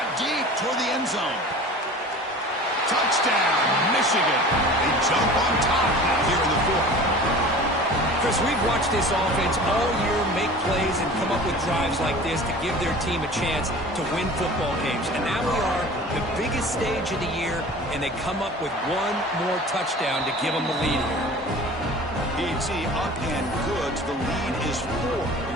deep toward the end zone. Touchdown, Michigan. They jump on top now here in the 4th. Chris, we've watched this offense all year make plays and come up with drives like this to give their team a chance to win football games. And now we are the biggest stage of the year, and they come up with one more touchdown to give them the lead here. PhD up and good. The lead is 4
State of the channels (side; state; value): both; normal; correlation 0.40